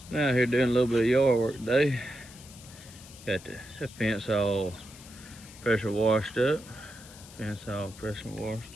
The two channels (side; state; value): left; noise; hiss, 19 dB below the sound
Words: Out here doing a little bit of yard work today. Got the fence all pressure washed up. Fence all pressure washed.